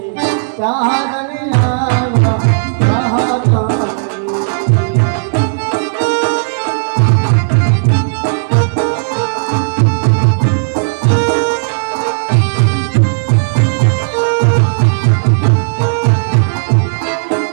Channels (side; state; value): left; silent; digital silence